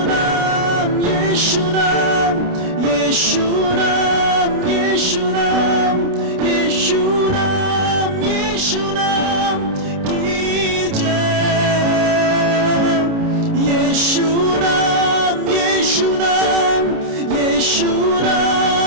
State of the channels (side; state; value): left; late; 29 ms